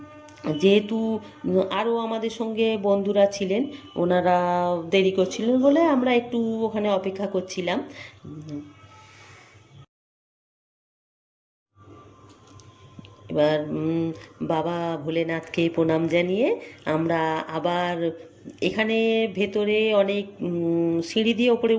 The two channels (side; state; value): both; identical; correlation 1.00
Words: যেহেতু আরও আমাদের সঙ্গে বন্ধুরা ছিলেন, ওনারা দেরি করছিলেন বলে আমরা একটু ওখানে অপেক্ষা করছিলাম। এবার বাবা ভোলেনাথকে প্রণাম জানিয়ে আমরা আবার এখানে ভেতরে অনেক সিঁড়ি দিয়ে ওপরে